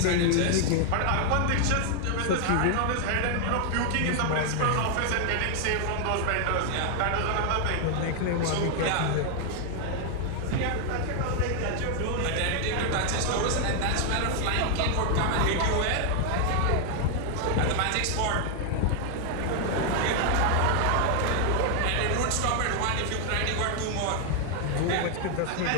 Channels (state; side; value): different; both; correlation 0.00